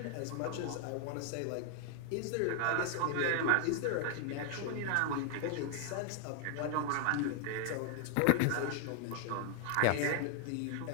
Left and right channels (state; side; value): different; both; correlation 0.00